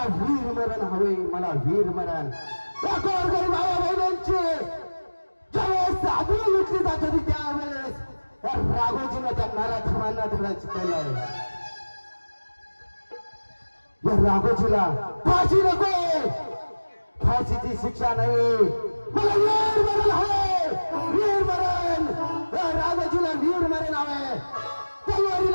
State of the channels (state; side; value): inverted; both; correlation -1.00